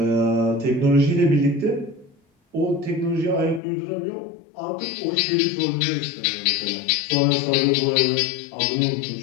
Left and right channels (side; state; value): right; drops out; at 3.6 s